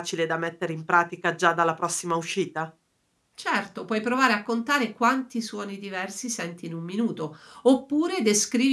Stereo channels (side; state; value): both; identical; correlation 1.00